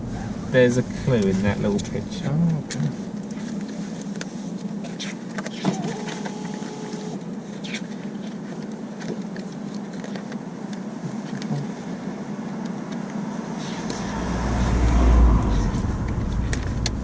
a clue in that little picture. Oh, okay.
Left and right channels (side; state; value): both; identical; correlation 1.00